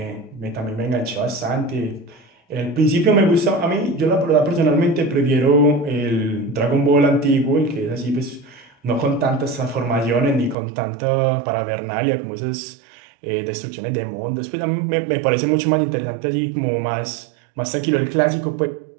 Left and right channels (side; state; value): left; drops out; at 10.6 s